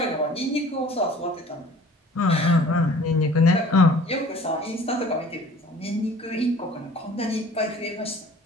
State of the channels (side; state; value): both; normal; correlation 0.49